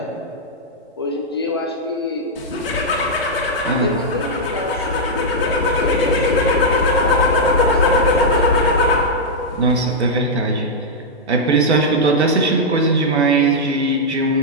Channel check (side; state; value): both; normal; correlation -0.05